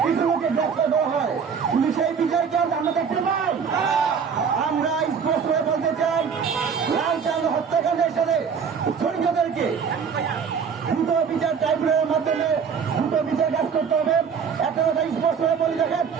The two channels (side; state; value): left; quieter; 6.5 dB